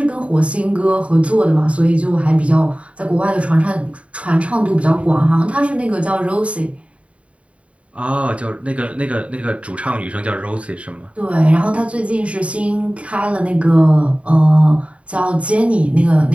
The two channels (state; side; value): late; left; 0.063 ms